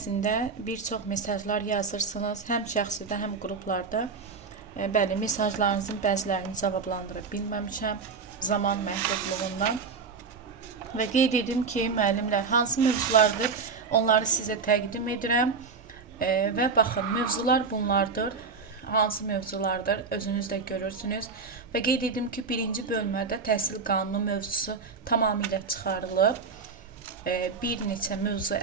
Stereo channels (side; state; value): left; quieter; 5.0 dB